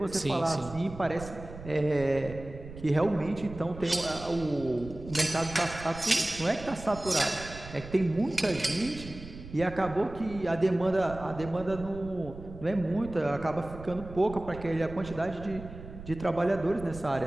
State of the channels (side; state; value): right; noise; rumble, 14 dB below the sound